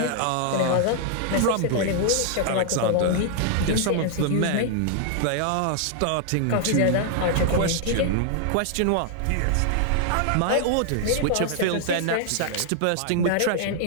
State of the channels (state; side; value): different; both; correlation -0.01